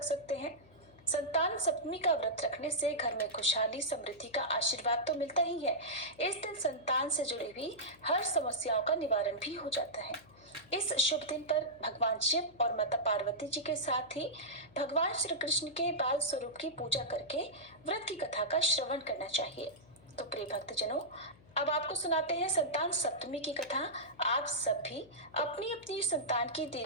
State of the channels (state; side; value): noise; left; hum, 25 dB below the sound